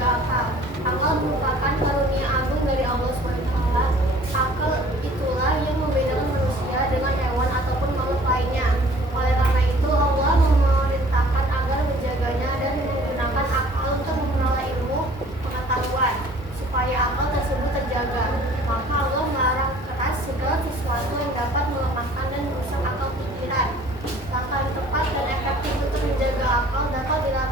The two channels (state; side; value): normal; both; correlation 0.52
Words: akal. Akal merupakan karunia agung dari Allah SWT. Akal itulah yang membedakan manusia dengan hewan ataupun makhluk lainnya. Oleh karena itu Allah memerintahkan agar menjaganya dan menggunakan akal untuk memperoleh ilmu pengetahuan supaya akal tersebut terjaga. Maka Allah melarang keras segala sesuatu yang dapat melemahkan dan merusak akal pikiran. Langkah yang tepat dan efektif untuk menjaga akal dapat